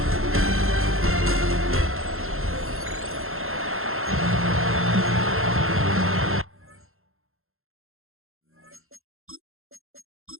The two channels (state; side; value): late; left; 0.61 ms